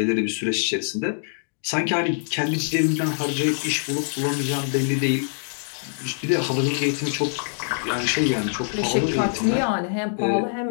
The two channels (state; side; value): silent; right; digital silence